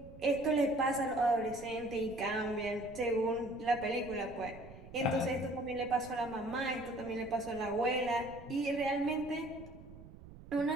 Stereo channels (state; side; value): noise; right; rumble, 17 dB below the sound